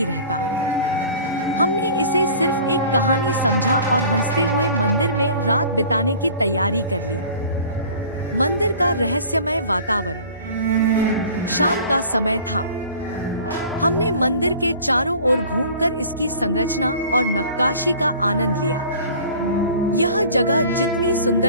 रहता। हमने इसे सिर्फ एक कहानी समझा और हंसते हुए मंदिर में रात बिताने की तैयारी कर ली। मंदिर का रहस्यमय वातावरण। शाम का समय था। हमने मंदिर के चारों ओर घूमकर इसकी संरचना और नक्काशी का आनंद लिया। यह जगह जितनी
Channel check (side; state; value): both; inverted; correlation -0.46